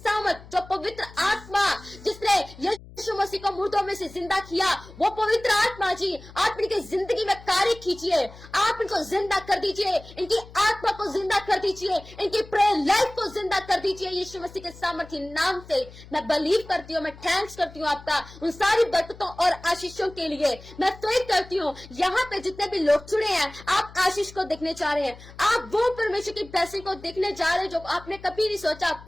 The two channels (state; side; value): noise; left; hum, 19 dB below the sound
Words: जो पवित्र आत्मा जिसने यीशु मसीह को मुर्दों में से जिंदा किया, वो पवित्र आत्मा जी आप इनकी जिंदगी में कार्य कीजिए। आप इनको जिंदा कर दीजिए, इनकी आत्मा को जिंदा कर दीजिए, इनकी प्रेयर लाइफ को जिंदा कर दीजिए यीशु मसीह के सामर्थ्य नाम से। मैं बिलीव करती हूँ, मैं थैंक्स करती हूँ आपका उन सारी बरकतों और आशीषों के लिए। मैं फेथ करती हूँ यहाँ पे जितने भी लोग जुड़े हैं, आप आशीष को देखने जा रहे हैं, आप वो परमेश्वर की ब्लेसिंग को देखने जा रहे हैं जो आपने कभी नहीं सोचा।